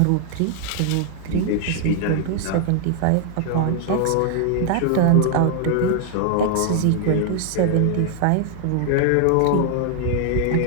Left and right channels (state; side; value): different; both; correlation 0.00